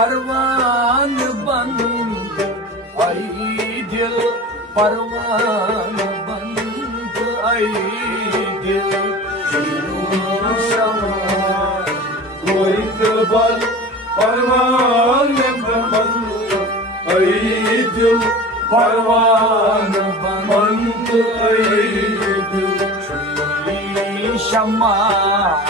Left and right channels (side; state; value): both; normal; correlation 0.35